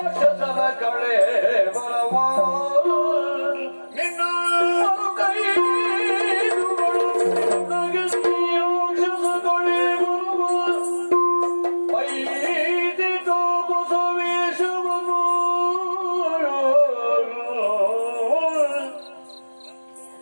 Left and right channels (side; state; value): both; inverted; correlation -1.00